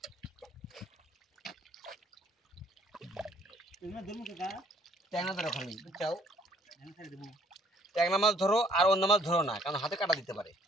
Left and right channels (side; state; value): both; normal; correlation 0.61